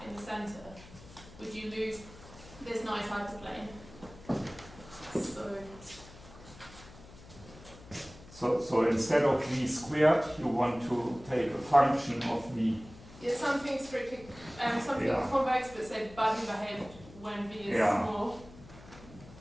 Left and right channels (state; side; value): noise; left; hum, 19 dB below the sound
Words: in the center, would you lose this nice hyperplane? So instead of v squared, you want to take a function of v. Yeah, something strictly, something convex, but say bugging ahead when v is small.